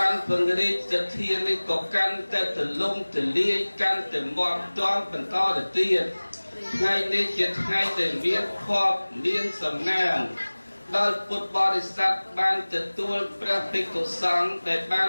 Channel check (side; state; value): both; inverted; correlation -1.00